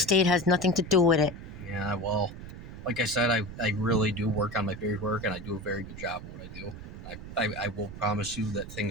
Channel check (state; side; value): noise; right; rumble, 12 dB below the sound